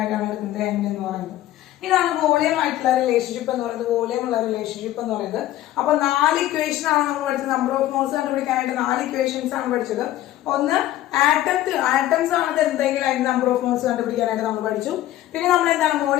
എടുക്കുന്നത് N എന്ന് പറയുന്നത്. ഇതാണ് വോളിയം ആയിട്ടുള്ള റിലേഷൻഷിപ്പ് എന്ന് പറയുന്നത്, വോളിയം ഉള്ള റിലേഷൻഷിപ്പ് എന്ന് പറയുന്നത്. അപ്പൊ 4 ഇക്വേഷൻ ആണ് നമ്മൾ പഠിച്ചത്. നമ്പർ ഓഫ് മോൾസ് കണ്ടുപിടിക്കാനായിട്ട് 4 ഇക്വേഷൻസ് ആണ് പഠിച്ചത്. ഒന്ന് ആറ്റംസ് ആണ് തരുന്നതെങ്കിൽ അതിന്റെ നമ്പർ ഓഫ് മോൾസ് കണ്ടുപിടിക്കാനായിട്ട് നമ്മൾ പഠിച്ചു. പിന്നെ നമ്മൾ എന്താണ്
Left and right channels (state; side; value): quieter; right; 14.1 dB